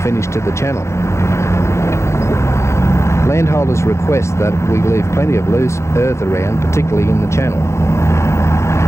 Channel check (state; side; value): late; right; 0.14 ms